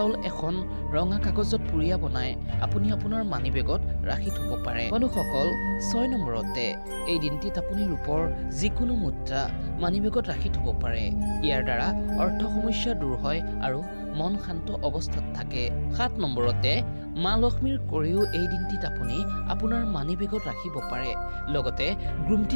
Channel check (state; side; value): inverted; both; correlation -1.00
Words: এখন ৰঙা কাগজত পুৰিয়া বনাই আপুনি আপোনাৰ মানিবেগত ৰাখি থব পাৰে। বন্ধুসকল, 6 নম্বৰতে এই দিনটিত আপুনি ৰূপৰ যিকোনো মুদ্ৰা মানিবেগত ৰাখি থব পাৰে। ইয়াৰ দ্বাৰা অৰ্থ সমস্যা দূৰ হয় আৰু মন শান্ত অৱস্থাত থাকে। 7 নম্বৰতে মা লক্ষ্মীৰ কৰিও এই দিনটিত আপুনি আপোনাৰ মানিবেগত ৰাখিব পাৰে। লগতে